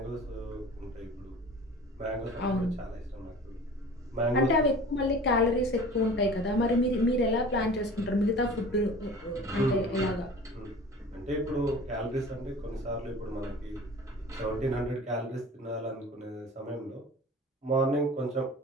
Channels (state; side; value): normal; both; correlation 0.41